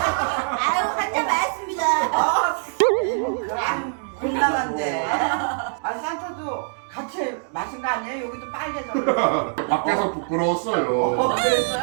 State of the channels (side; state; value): left; silent; digital silence